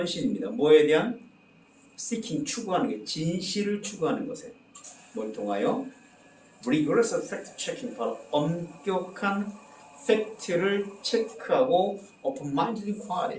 뭐에 대한? seeking, 추구하는 게, 진실을 추구하는 것에. 뭘 통하여? rigorous fact checking, 바로 엄격한 팩트를 체크하고 open-minded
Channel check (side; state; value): both; identical; correlation 1.00